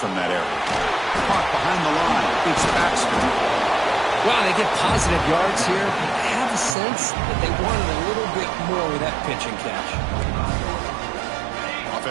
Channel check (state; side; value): drops out; left; at 6.8 s